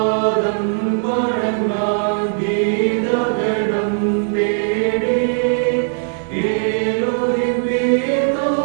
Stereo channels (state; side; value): silent; left; digital silence